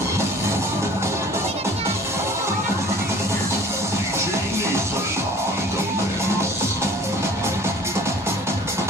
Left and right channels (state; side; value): normal; both; correlation 0.48